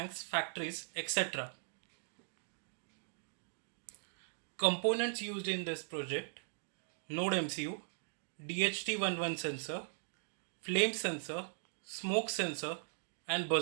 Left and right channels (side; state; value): left; silent; digital silence